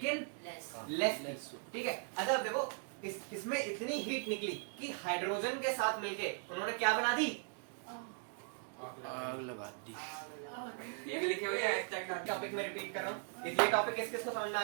लेस लेस थी, ठीक है। अच्छा अब देखो इसमें इतनी हीट निकली कि हाइड्रोजन के साथ मिलके उन्होंने क्या बना दी, आग लगा दी। ये भी लिखे हुए हैं hashtag डाल। टॉपिक में रिपीट कर रहा हूँ। ये टॉपिक किस किस को समझ में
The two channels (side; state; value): left; silent; 52 dB below the other